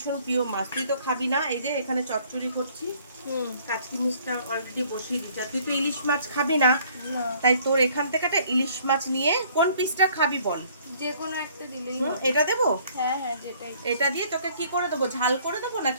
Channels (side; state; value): both; inverted; correlation -0.59